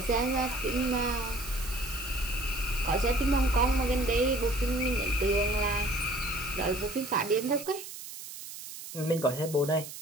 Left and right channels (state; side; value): noise; right; hiss, 12 dB below the sound